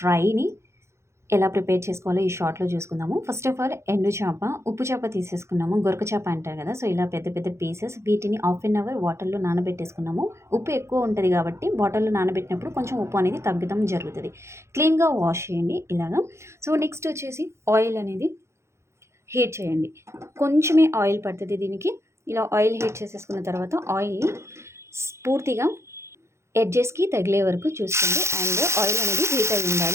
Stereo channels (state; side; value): late; left; 0.13 ms